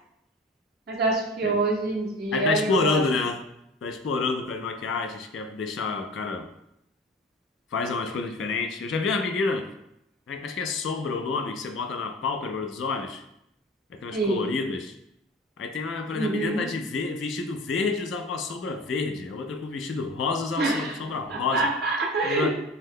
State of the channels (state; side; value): normal; both; correlation 0.37